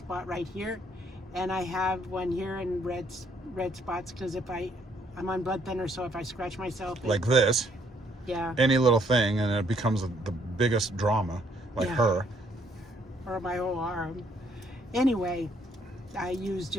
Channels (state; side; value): normal; both; correlation 0.68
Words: right here, and I have one here in red spots because I'm on blood thinner, so if I scratch myself, like this. yeah, Any little thing, and it becomes the biggest drama. Like Yeah. her. or my whole arm. Anyway, I use